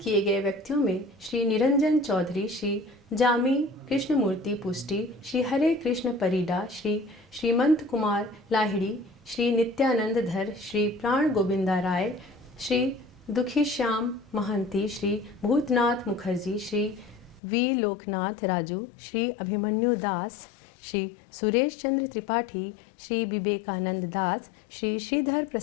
गए व्यक्तियों में श्री निरंजन चौधरी, श्री जामी कृष्णमूर्ति पुष्टि, श्री हरे कृष्ण परिडा, श्री श्रीमंत कुमार लाहिड़ी, श्री नित्यानंद धर, श्री प्राण गोविंदा राय, श्री दुखीश्याम महंती, श्री भूतनाथ मुखर्जी, श्री वी लोकनाथ राजू, श्री अभिमन्यु दास, श्री सुरेश चंद्र त्रिपाठी, श्री विवेकानंद दास, श्री श्रीधर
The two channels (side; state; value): right; drops out; at 17.4 s